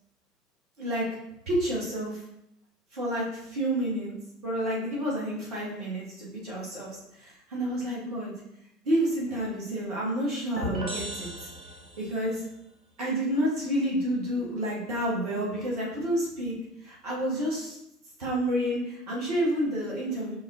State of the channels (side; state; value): both; normal; correlation 0.36